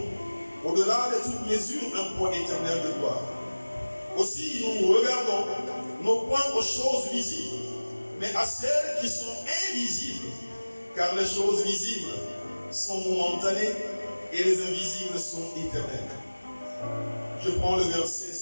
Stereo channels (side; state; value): both; inverted; correlation -1.00